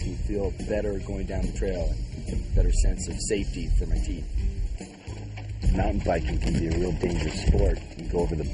me feel better going down the trail and a better sense of safety for my teeth. Mountain biking can be a real dangerous sport. You can go over the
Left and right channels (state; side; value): identical; both; correlation 1.00